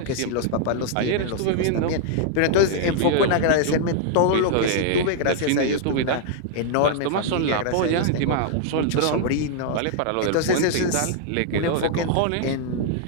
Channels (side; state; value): both; different; correlation -0.01